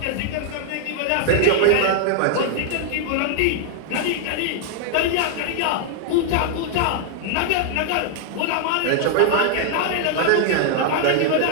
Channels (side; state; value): both; different; correlation 0.00